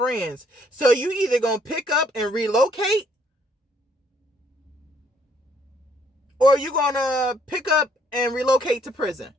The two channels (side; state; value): both; normal; correlation 0.66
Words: So you either going to pick up and relocate, or you're going to pick up and relocate to prison.